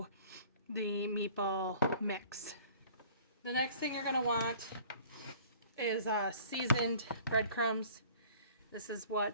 the meatball mix. The next thing you're going to want is seasoned breadcrumbs. This is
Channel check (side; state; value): both; inverted; correlation -0.50